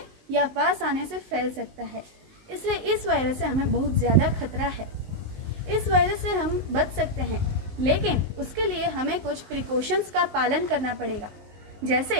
या पास आने से फैल सकता है। इसलिए इस वायरस से हमें बहुत ज़्यादा खतरा है। इस वायरस से हम बच सकते हैं, लेकिन उसके लिए हमें कुछ प्रिकॉशंस का पालन करना पड़ेगा।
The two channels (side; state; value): left; late; 19 ms